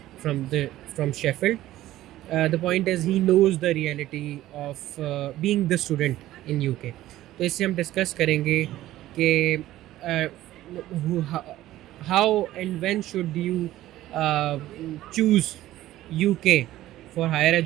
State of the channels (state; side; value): quieter; left; 14.8 dB